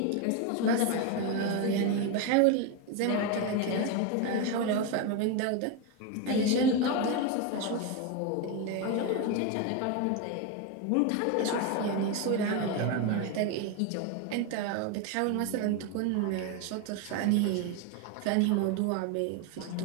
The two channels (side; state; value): both; different; correlation 0.02